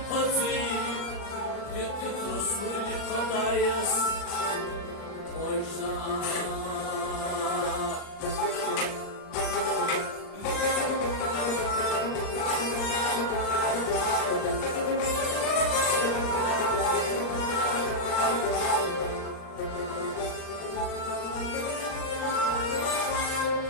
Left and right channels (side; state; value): right; late; 39 ms